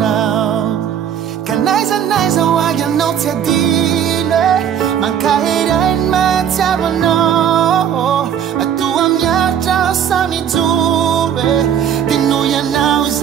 Ka naizanaiza ho agy anao tsy adino. Mankahery mahatsiavanao. Atoa miaritra aho samy joro. Dia noho ianao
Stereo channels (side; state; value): left; quieter; 9.0 dB